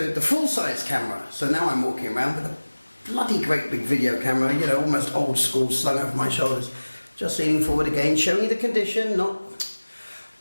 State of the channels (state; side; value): inverted; both; correlation -1.00